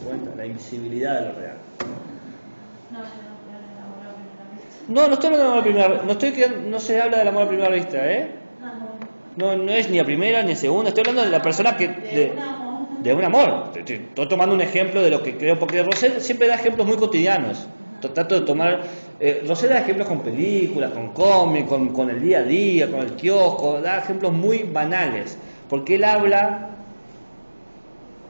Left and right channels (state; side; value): inverted; both; correlation -1.00